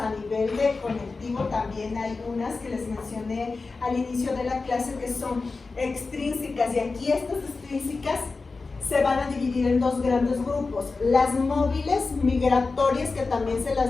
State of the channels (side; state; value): right; quieter; 4.0 dB